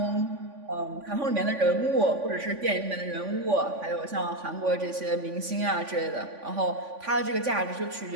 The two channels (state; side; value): late; left; 3.5 ms